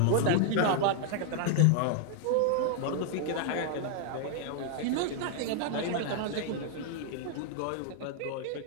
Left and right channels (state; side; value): different; both; correlation 0.00